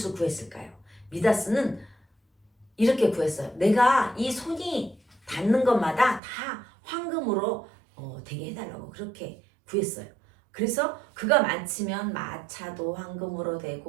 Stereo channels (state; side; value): drops out; left; at 6.2 s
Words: 구했을까요? 미다스는 이렇게 구했어요. 내가 이 손이 닿는 것마다 다 황금으로 되게 해달라고 그렇게 구했어요. 그래서 그가 많으면 마차도 황금으로